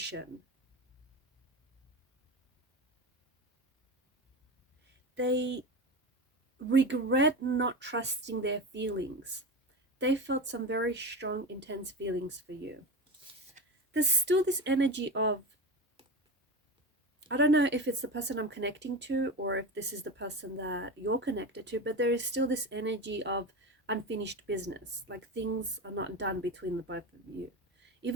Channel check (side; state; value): both; normal; correlation 0.23